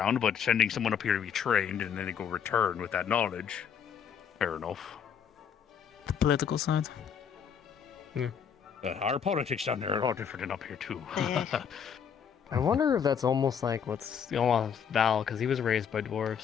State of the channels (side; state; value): right; quieter; 7.6 dB